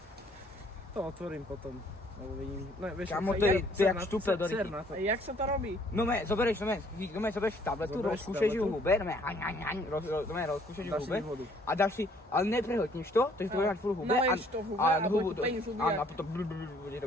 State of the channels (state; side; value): normal; both; correlation 0.61